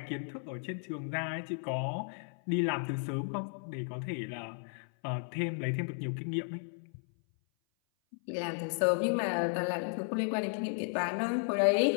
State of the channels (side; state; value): right; silent; 55 dB below the other